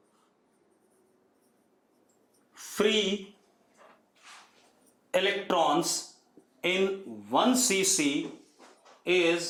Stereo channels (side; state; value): both; identical; correlation 1.00